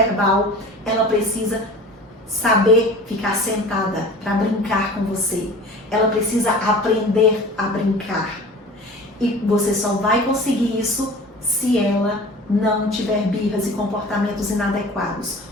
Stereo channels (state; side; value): normal; both; correlation 0.40